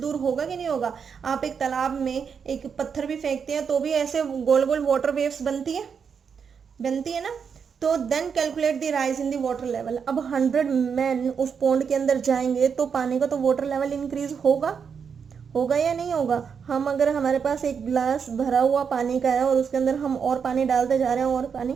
होगा कि नहीं होगा. आप एक तालाब में एक पत्थर भी फेंकते हैं तो भी ऐसे गोल गोल वाटर वेव्स बनती है ना. तो then calculate the rise in the water level. अब 100 मैन उस पौंड के अंदर जाएंगे तो पानी का तो वाटर लेवल इंक्रीज होगा या नहीं होगा. हम अगर हमारे पास एक ग्लास भरा हुआ पानी का है और उसके अंदर हम और पानी डालते जा रहे हैं और पानी,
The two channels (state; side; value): quieter; left; 6.6 dB